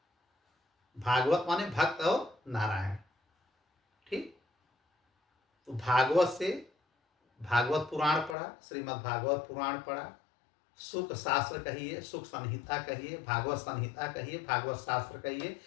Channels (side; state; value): right; drops out; at 8.3 s